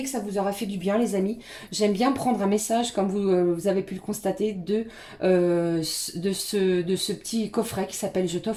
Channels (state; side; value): identical; both; correlation 1.00